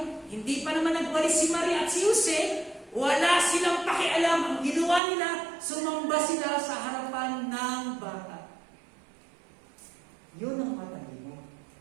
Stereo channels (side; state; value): left; drops out; at 5.0 s